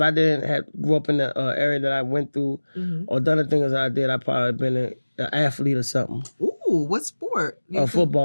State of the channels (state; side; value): inverted; both; correlation -1.00